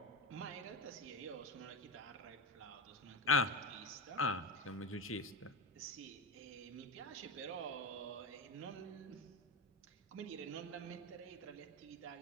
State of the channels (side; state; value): both; normal; correlation 0.17